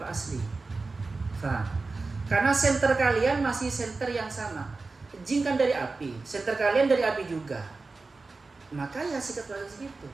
asli. Faham? Karena senter kalian masih senter yang sama. Jin kan dari api, senter kalian dari api juga. Maka ya sikap kalian segitu.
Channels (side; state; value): left; quieter; 3.8 dB